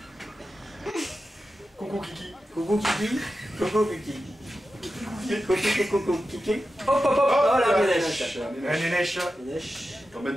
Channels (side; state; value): both; normal; correlation 0.92